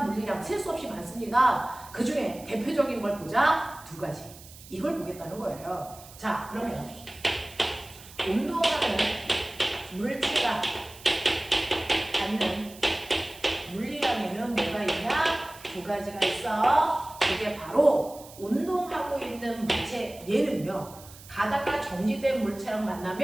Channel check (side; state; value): right; noise; hiss, 19 dB below the sound